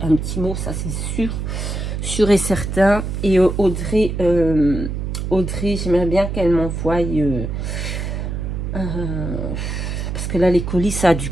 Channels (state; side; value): noise; right; hum, 3 dB below the sound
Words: mot, ça c'est sûr et certain. Et Audrey, j'aimerais bien qu'elle m'envoie, parce que là les colis, ça a dû